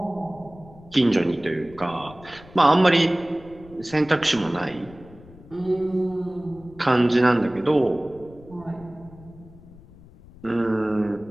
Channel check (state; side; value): noise; left; rumble, 21 dB below the sound